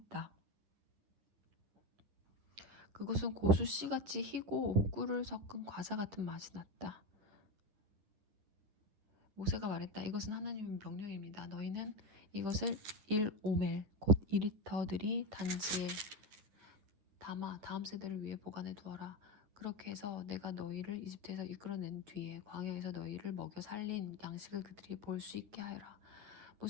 그것은 고수 씨같이 희고 꿀을 섞은 과자 같은 맛이 났다. 모세가 말했다. 이것은 하나님의 명령입니다. 너희는 이것을 1오멜 곧 2리터들이 단지에 담아 다음 세대를 위해 보관해 두어라. 그렇게 해서 내가 너희를 이집트에서 이끌어낸 뒤에 광야에서 너희를 먹여 살린 양식을 그들이 볼 수 있게 하여라.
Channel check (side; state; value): left; late; 10 ms